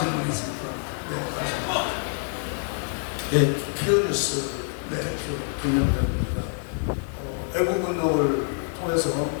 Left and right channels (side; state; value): right; silent; 56 dB below the other